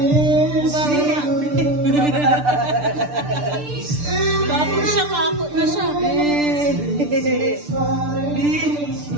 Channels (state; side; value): late; left; 6.8 ms